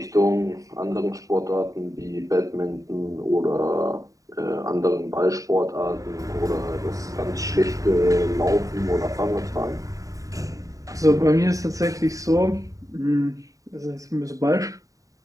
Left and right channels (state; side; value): late; left; 0.16 ms